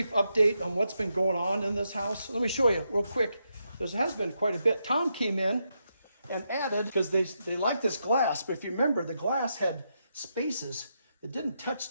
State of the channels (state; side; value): inverted; both; correlation -0.82